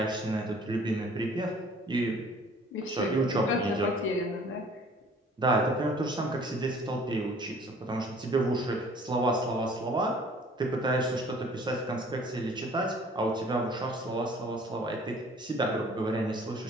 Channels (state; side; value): normal; both; correlation 0.53